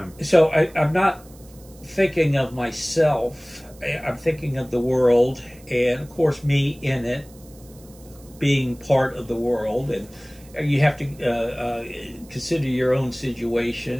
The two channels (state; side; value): noise; right; hiss, 25 dB below the sound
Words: So I'm not thinking of myself. I'm thinking of the world, and of course me in it, being part of the world. And you have to consider your own